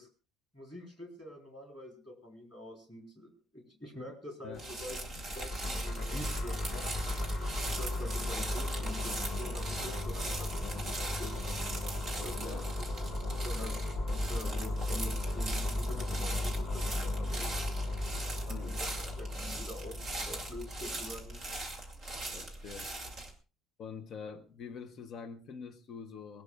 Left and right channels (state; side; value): normal; both; correlation 0.81